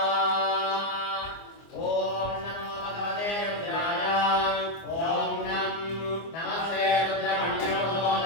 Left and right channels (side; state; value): right; late; 24 ms